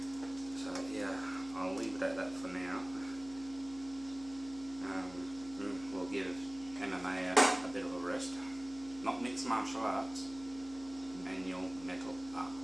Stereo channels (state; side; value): noise; left; hum, 19 dB below the sound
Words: So yeah, I'll leave it at that for now. We'll give MMA a bit of a rest. Not mixed martial arts, manual metal arc